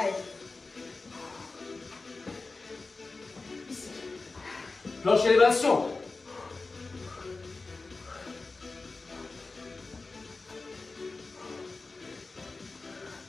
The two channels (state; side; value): quieter; right; 3.7 dB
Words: Ici. Planche élévation.